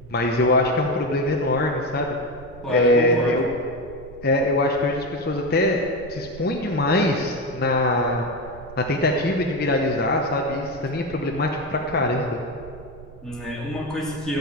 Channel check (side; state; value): right; noise; rumble, 18 dB below the sound